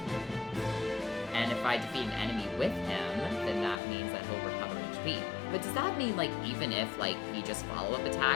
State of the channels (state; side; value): drops out; right; at 3.8 s